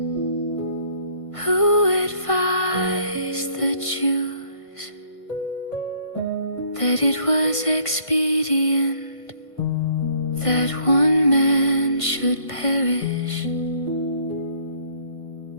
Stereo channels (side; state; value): right; late; 1.5 ms